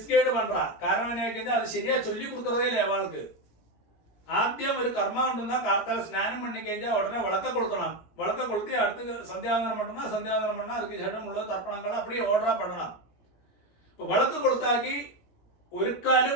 பண்றா. காரணம் என்ன, அது சரியா சொல்லி கொடுக்கறதே இல்லை அவளுக்கு. ആദ്യം ഒരു കർമ്മം ഉണ്ടെന്നാ കാർത്താല സ്നാനം പണി കഴിഞ്ഞാൽ ഉടനെ വിളക്ക കൊളുത്തണം. വിളക്ക കൊളുത്തി അടുത്ത് സന്ധ്യാവന്തനം பண்ணா சந்தியாவந்தனம் பண்ணா அதுக்கு ശേഷം ഉള്ള തർപ്പണങ്ങൾ அப்படியே ഓർഡറാ பண்ணണം. ഇപ്പൊ വിളക്ക് കൊളുത്താക്കി ഒരുക്കാലും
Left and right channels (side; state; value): right; late; 17 ms